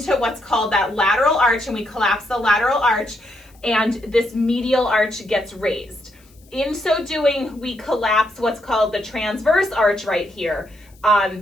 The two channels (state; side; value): noise; left; hiss, 30 dB below the sound